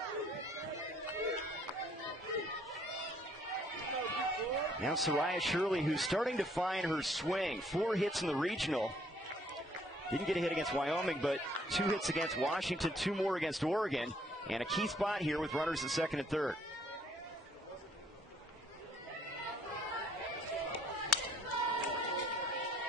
Now Soraya Shirley, who's starting to find her swing. 4 hits in the regional. Didn't get a hit against Wyoming, but 2 hits against Washington, 2 more against Oregon. And a key spot here with runners at second and third.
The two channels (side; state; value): both; normal; correlation 0.64